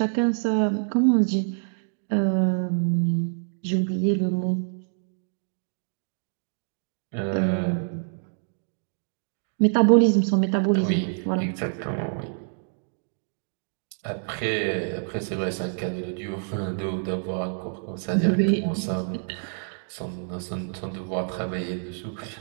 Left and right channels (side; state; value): left; silent; digital silence